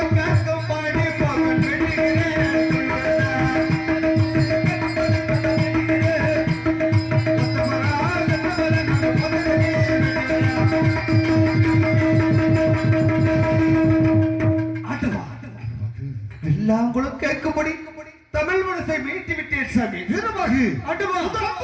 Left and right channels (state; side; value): identical; both; correlation 1.00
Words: வெள்ளாங்குளம் கேட்கும்படி தமிழ் மனசை மீட்டி விட்டேன் சாமி. வீரமாகு